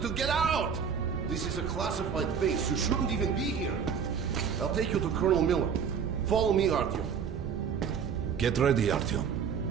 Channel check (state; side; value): quieter; left; 7.0 dB